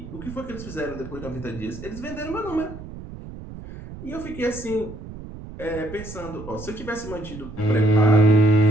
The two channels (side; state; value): right; noise; rumble, 12 dB below the sound